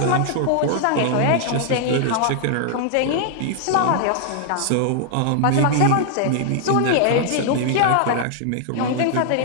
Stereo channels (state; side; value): different; both; correlation -0.01